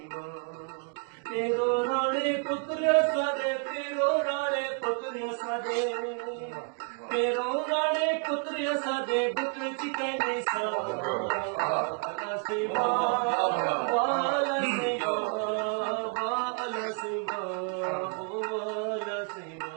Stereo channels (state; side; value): quieter; left; 39.5 dB